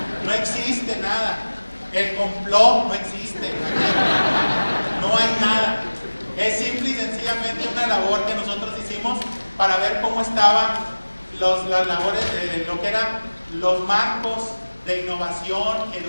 no existe nada, el complot no existe, no hay nada, es simple y sencillamente una labor que nosotros hicimos para ver cómo estaban las labores de lo que eran los marcos de innovación,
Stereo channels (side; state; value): both; inverted; correlation -1.00